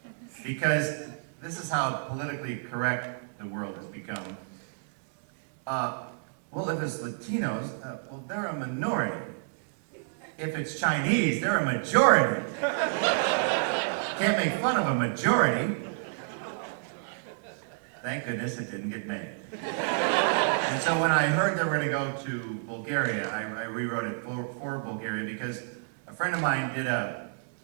because this is how politically correct the world has become. Well, if it's Latinos, well, they're a minority. If it's Chinese, they're a majority. Can't make fun of a majority. Thank goodness it didn't get made. And so when I heard they were going to go to Bulgaria, I rewrote it for Bulgaria because a friend of mine did an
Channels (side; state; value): left; silent; digital silence